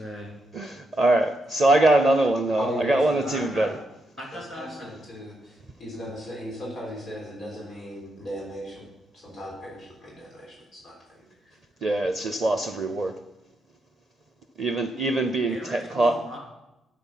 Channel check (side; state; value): both; normal; correlation 0.81